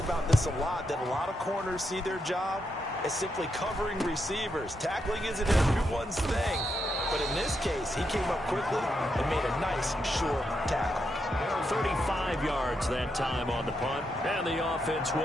this a lot, that a lot of corners see their job as simply covering receivers. Tackling isn't everyone's thing. But in this case, he came up quickly and made a nice, short tackle. 35 yards that time on the punt. And the offense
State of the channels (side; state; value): both; normal; correlation 0.82